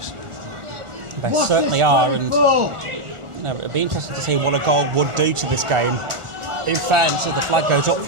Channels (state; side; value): late; left; 1.4 ms